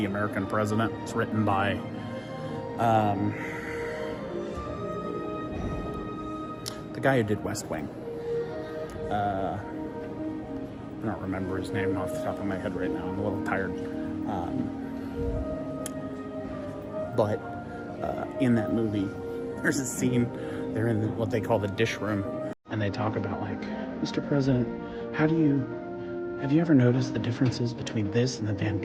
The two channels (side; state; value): both; identical; correlation 1.00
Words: American President. It's written by the guy who did West Wing. I don't remember his name off the top of my head right now. I'm a little tired. But in that movie, there's a scene, they're in what they call the dish room, and they talk about, like, Mr. President, have you ever noticed the differences between this and the Van